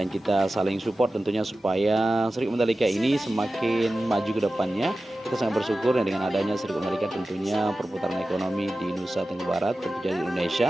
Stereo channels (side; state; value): both; normal; correlation 0.95